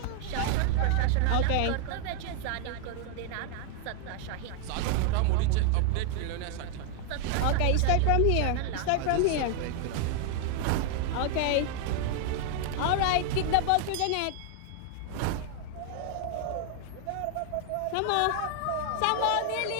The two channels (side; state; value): both; different; correlation 0.00